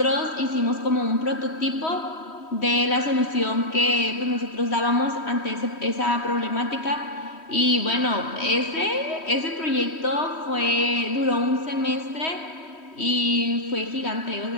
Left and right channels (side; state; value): right; late; 3.1 ms